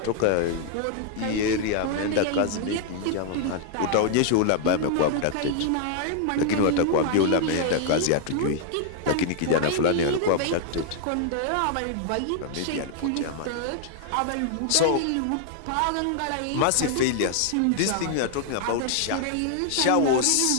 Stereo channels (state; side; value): different; both; correlation 0.00